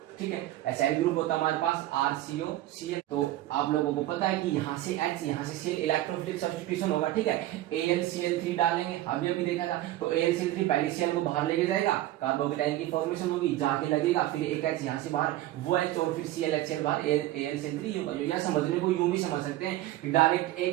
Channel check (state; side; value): quieter; left; 15.2 dB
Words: ठीक है, एसाइल ग्रुप होता है हमारे पास RCOCl। तो आप लोगों को पता है कि यहाँ से H यहाँ से Cl इलेक्ट्रोफिलिक सब्स्टिट्यूशन होगा, ठीक है, AlCl3 डालेंगे, अभी देखा था, तो AlCl3 पहले Cl को बाहर लेके जाएगा, कार्बोकेटाइन की फॉर्मेशन होगी, जाके लगेगा, फिर एक H यहाँ से बाहर, वो H और फिर ClHCl बाहर, AlCl3 होगा। यह समझने को यूं भी समझ सकते हैं कि डायरेक्ट